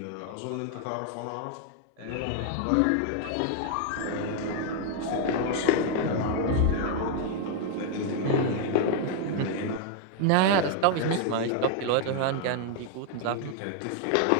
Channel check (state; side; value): different; both; correlation 0.00